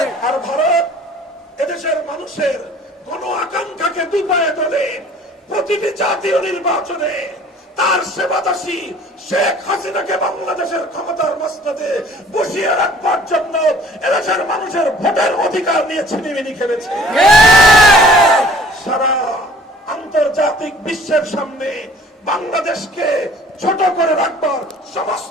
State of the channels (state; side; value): normal; both; correlation 0.52